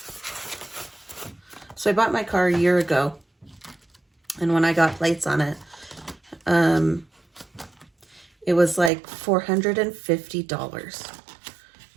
So I bought my car a year ago, and when I got plates on it, it was like $450.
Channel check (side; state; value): left; drops out; at 8.9 s